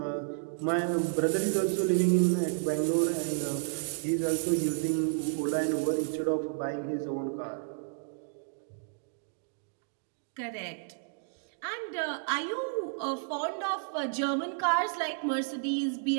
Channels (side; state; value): left; silent; digital silence